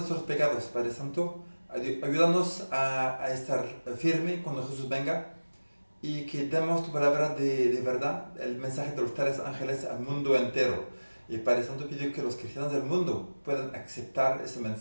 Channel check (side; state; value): both; inverted; correlation -1.00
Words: pecados, Padre Santo. Ayúdanos a estar firme cuando Jesús venga y que demos tu palabra de verdad, el mensaje de los 3 ángeles al mundo entero. Y Padre Santo, pido que los cristianos del mundo puedan aceptar ese